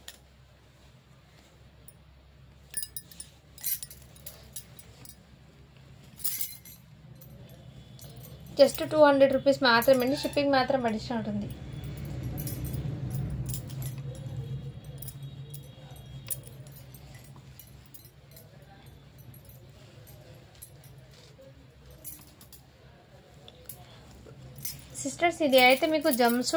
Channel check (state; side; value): identical; both; correlation 1.00